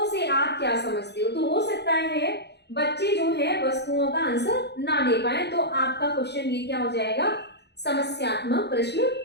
से आप क्या समझते हो। तो हो सकता है बच्चे जो है वस्तुओं का आंसर ना दे पाए, तो आपका क्वेश्चन ये क्या हो जाएगा, समस्यात्मक प्रश्न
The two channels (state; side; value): late; right; 0.49 ms